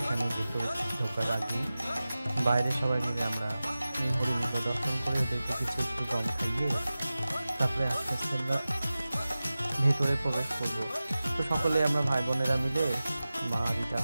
এখানে ভিতরে ঢোকার আগে বাইরে সবাই মিলে আমরা এই হরিণগুলো দর্শন করে ওদেরকে কিছু একটু কম খাইয়ে তারপরে আস্তে আস্তে আমরা ভেতরে প্রবেশ করব। তো সকলে আমরা ভাই বোনেরা মিলে, মা দিদা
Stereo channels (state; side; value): inverted; both; correlation -0.96